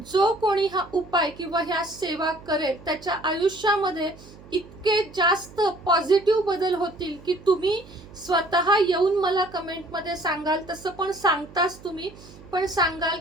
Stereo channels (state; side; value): noise; right; hum, 20 dB below the sound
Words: जो कोणी हा उपाय किंवा ह्या सेवा करेल त्याच्या आयुष्यामध्ये इतके जास्त पॉझिटिव्ह बदल होतील की तुम्ही स्वतः येऊन मला कमेंटमध्ये सांगाल। तसं पण सांगताच तुम्ही पण सांगाल